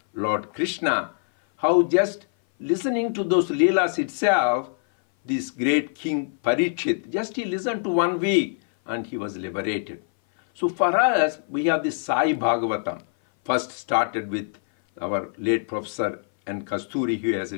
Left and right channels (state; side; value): silent; right; 58 dB below the other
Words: Lord Krishna, how just listening to those Leelas itself, this great king Parikshit, just he listened to 1 week and he was liberated. So for us, we have this Sai Bhagavatam, first started with our late Professor N. Kasturi, who has